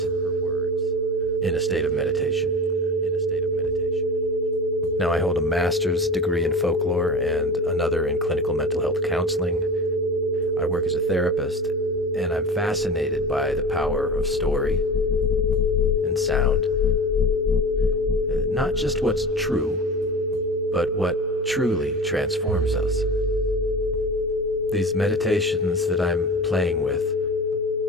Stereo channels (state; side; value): normal; both; correlation 0.33